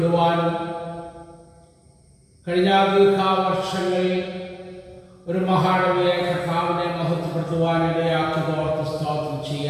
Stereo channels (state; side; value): identical; both; correlation 1.00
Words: കഴിഞ്ഞ ദീർഘവർഷങ്ങളിൽ ഒരു മഹാടവകയെ കർത്താവിനെ മഹത്വപ്പെടുത്തുവാനിടയാക്കിയതോർത്ത് സ്തോത്രം